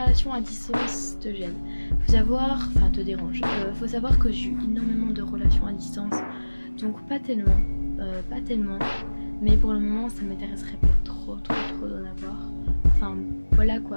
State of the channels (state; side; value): inverted; both; correlation -1.00